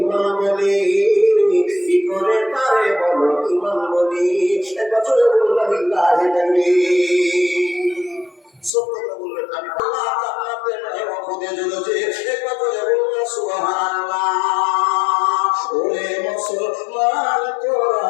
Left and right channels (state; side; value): drops out; right; at 8.7 s